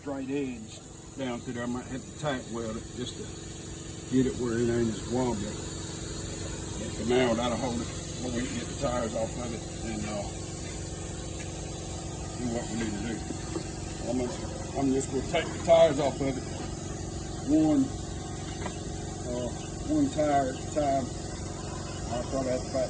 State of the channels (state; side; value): identical; both; correlation 1.00